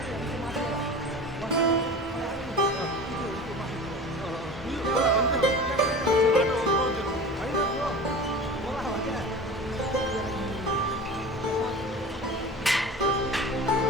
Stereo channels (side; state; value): both; normal; correlation 0.36